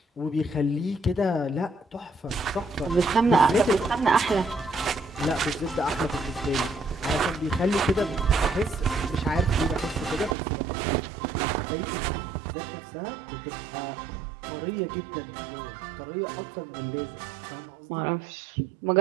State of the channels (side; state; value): left; drops out; at 10.4 s